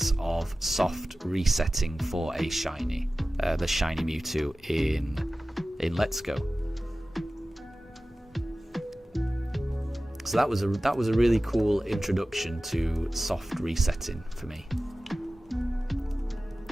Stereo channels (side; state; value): both; normal; correlation 0.96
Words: of soft resetting for a shiny, the Shiny Mewtwo in Let's Go. So that was a really cool introduction to soft resetting for me.